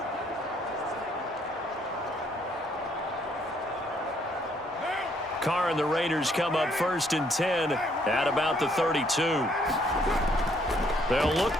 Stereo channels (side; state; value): both; normal; correlation 0.68